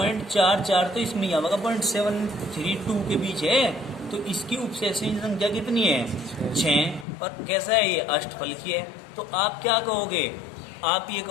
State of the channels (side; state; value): right; drops out; at 7.1 s